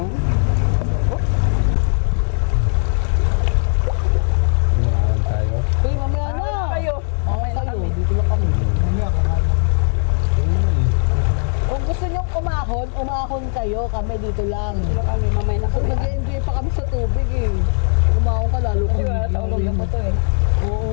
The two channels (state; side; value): silent; right; 58 dB below the other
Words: kayo, kami dito lang. Wala kami, mamay na So, kami. nag-enjoy pa kami sa tubig eh. Kumaon ka lalo Kasi kami. wala sa ulong na po to eh. Oo.